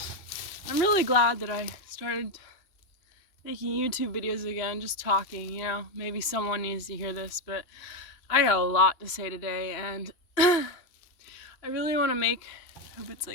I'm really glad that I started making YouTube videos again, just talking, maybe someone needs to hear this, but I got a lot to say today, and I really want to make, I hope it's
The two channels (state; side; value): late; right; 2.8 ms